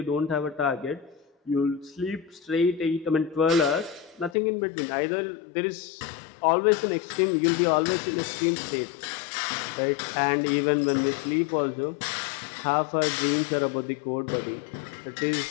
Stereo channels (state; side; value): drops out; right; at 4.4 s